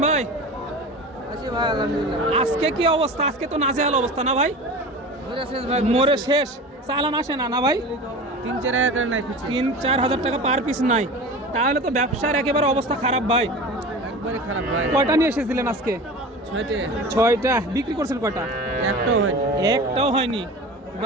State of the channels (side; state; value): both; normal; correlation 0.34